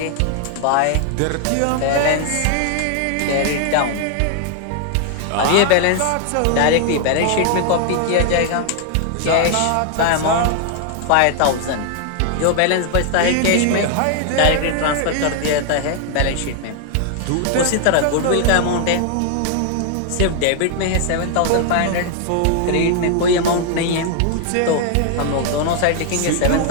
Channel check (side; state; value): both; different; correlation 0.00